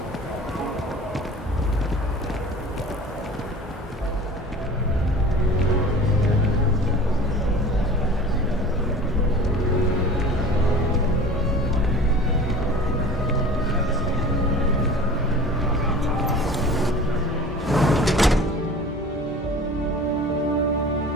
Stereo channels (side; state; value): both; normal; correlation 0.41